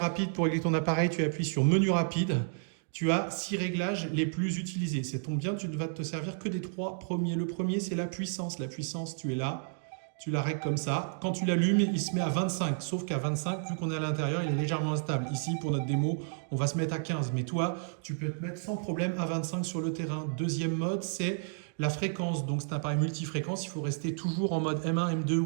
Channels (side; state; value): left; silent; digital silence